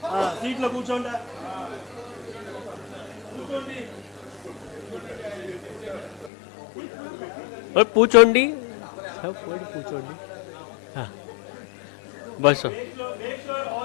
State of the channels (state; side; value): drops out; right; at 6.3 s